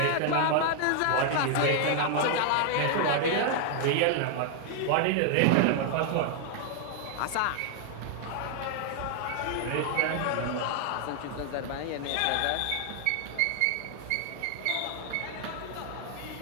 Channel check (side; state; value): both; different; correlation 0.00